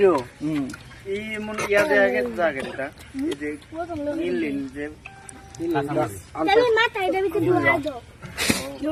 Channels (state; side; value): identical; both; correlation 1.00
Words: এই মন ইয়া দেয়া গেছে জায়গাটা এই যে ইনলিন যে তুমি মাথা এটা ভিতরে ঢুকা দাও